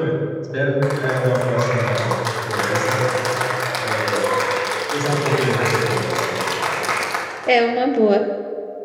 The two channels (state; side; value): identical; both; correlation 1.00